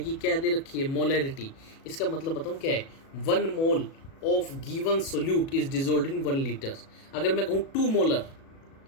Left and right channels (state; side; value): late; right; 37 ms